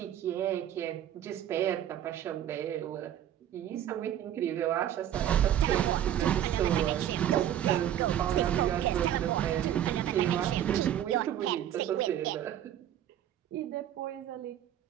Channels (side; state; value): left; quieter; 11.0 dB